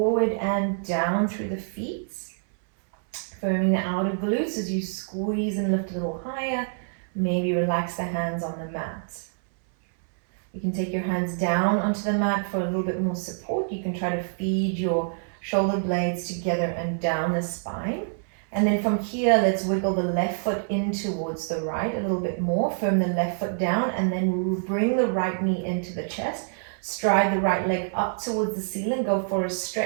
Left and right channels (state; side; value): silent; left; 61 dB below the other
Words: and down through the feet, firming the outer glutes as you squeeze and lift a little higher, maybe relax the hands on the mat. You can take your hands down onto the mat for a little bit more support. You can try to feed your shoulder blades together and down the spine. And then from here, let's wiggle the left foot in towards the right a little bit more. Firm the left foot down and then bring the right knee into the chest. Stride the right leg up towards the ceiling. Go for a